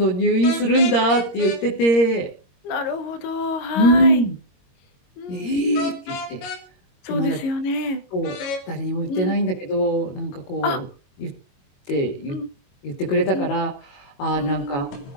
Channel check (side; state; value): right; late; 21 ms